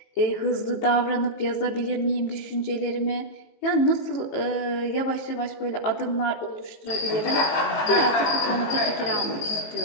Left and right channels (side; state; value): right; late; 19 ms